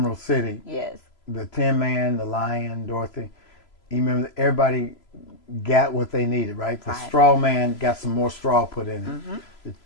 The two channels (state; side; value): late; right; 3.0 ms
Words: City. Yes. The Tin Man, the Lion, Dorothy. You remember everybody got what they needed, right? The Straw Man got some more straw put in it.